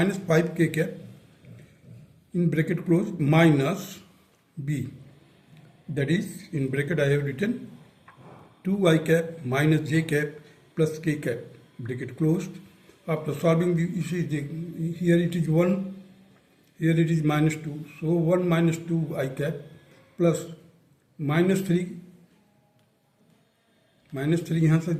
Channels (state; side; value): identical; both; correlation 1.00